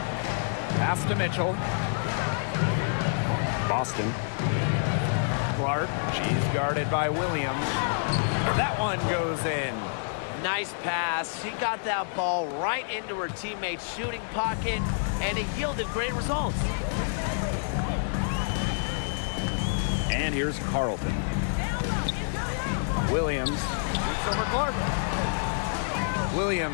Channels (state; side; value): silent; right; 59 dB below the other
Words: Pass to Mitchell. Boston. Clark. She's guarded by Williams. That one goes in. Nice pass. She got that ball right into her teammate's shooting pocket, and it yielded great results. And here's Carlton. Williams shoots over Clark.